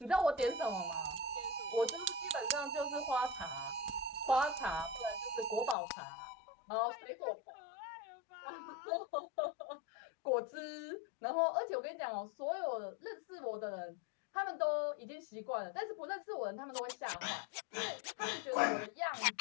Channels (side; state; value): right; drops out; at 5.8 s